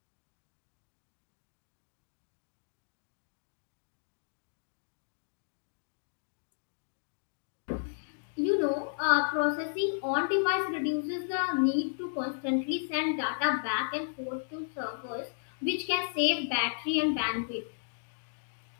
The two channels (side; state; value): right; silent; digital silence